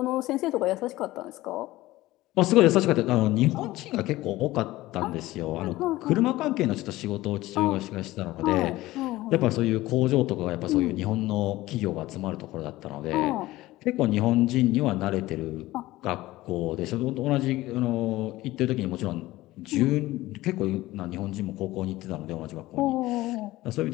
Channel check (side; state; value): right; quieter; 17.5 dB